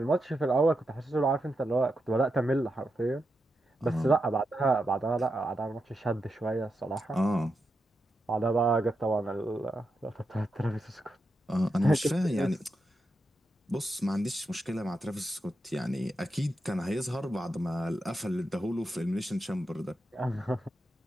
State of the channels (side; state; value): both; normal; correlation 0.86